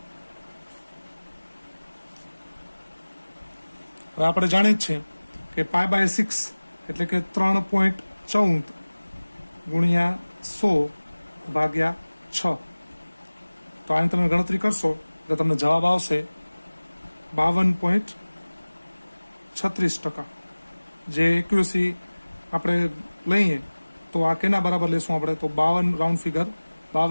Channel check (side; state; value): both; inverted; correlation -1.00